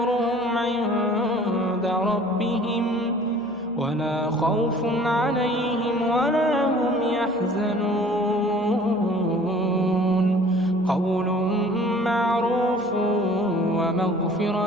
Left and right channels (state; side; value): noise; left; hum, 26 dB below the sound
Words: عند ربهم ولا خوف عليهم ولا هم يحزنون. قول معروف